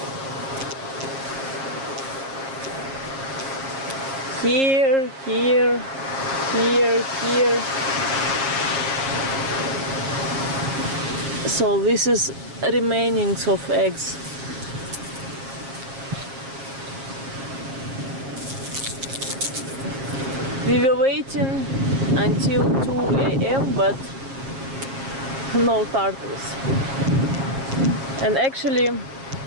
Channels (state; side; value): late; left; 7.5 ms